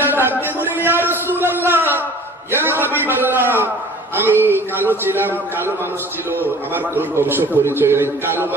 ডাক দিয়ে বলেন, ইয়া রাসূলুল্লাহ, ইয়া হাবিবাল্লাহ, আমি কালো ছিলাম, কালো মানুষ ছিল, আমার কোন বংশ পরিচয় নেই, কালো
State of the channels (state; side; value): normal; both; correlation 0.47